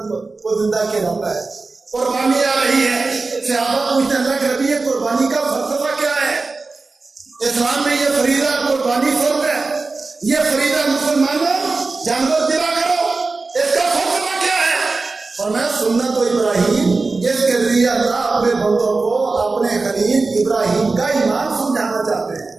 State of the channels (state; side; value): quieter; left; 3.8 dB